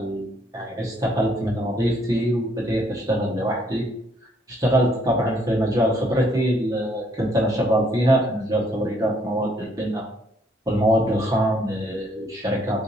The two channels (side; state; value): both; normal; correlation 0.68